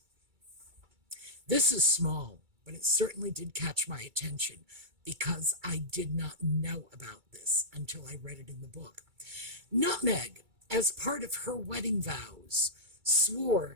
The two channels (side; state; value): left; late; 2.3 ms